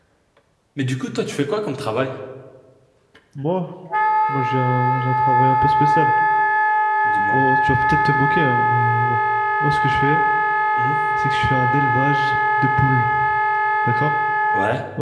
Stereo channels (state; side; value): identical; both; correlation 1.00